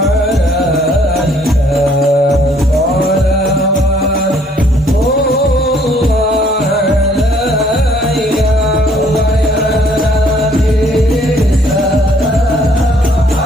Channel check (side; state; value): both; normal; correlation 0.62